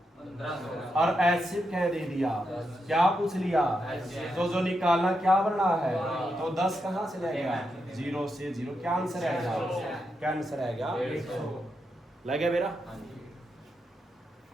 और एचसीएफ क्या दे दिया क्या पूछ लिया तो जो निकालना क्या बनना है तो 10 कहां से लगेगा 0 से 0 क्या आंसर आएगा क्या आंसर आएगा लगे मेरा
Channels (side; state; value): both; normal; correlation 0.84